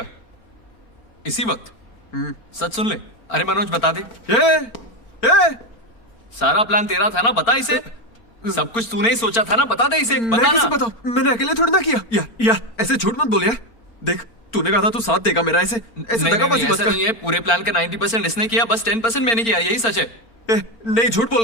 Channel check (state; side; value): late; right; 4.4 ms